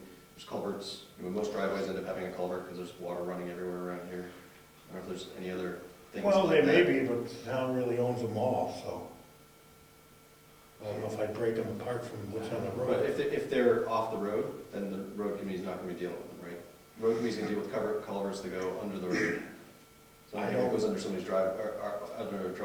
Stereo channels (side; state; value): both; identical; correlation 1.00